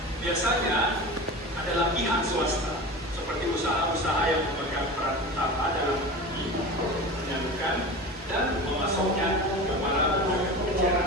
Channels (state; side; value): normal; both; correlation 0.31